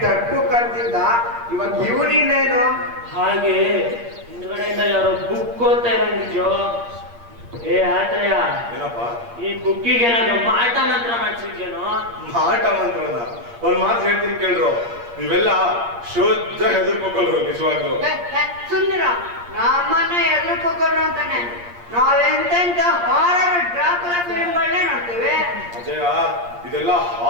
ಡಪ್ಪು ಕರ್ತಿದ್ದ, ಇವಾಗ ಇವನಿನ್ನೇನು? ಹಾಗೆ ಹಿಂದ್ಗಡೆಯಿಂದ ಯಾರೋ ಬುಕ್ ಓದ್ತಾ ಇರಂಗಿದ್ಯೋ. ಏ ಆತ್ರಯ, ಏನಪ್ಪ? ಈ ಬುಕ್ಕಿಗೆ ಏನಾದ್ರು ಮಾಟ ಮಂತ್ರ ಮಾಡ್ಸಿದ್ಯೇನೋ? ಮಾಟ ಮಂತ್ರನ ಒಂದ್ ಮಾತು ಹೇಳ್ತೀನಿ ಕೇಳ್ರು. ನೀವೆಲ್ಲ ಶುದ್ಧ ಹೆದರ್ಕೋಕಲ್ರು ನಿಜವಾಗ್ಲು. ಸುಂದರ, ನಮ್ಮನ್ನ ಎದುರ್ಕೋರು ಅಂತಾನೆ ನಾವೆಂತೆಂತ ಹಾರರ್ ಡ್ರಾಕುಲಾ ಫಿಲ್ಮ್ಗಳನ್ನೇ ನೋಡ್ತೀವಿ. ಅಜಯ, ಇದೆಲ್ಲ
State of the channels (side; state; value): left; late; 8.5 ms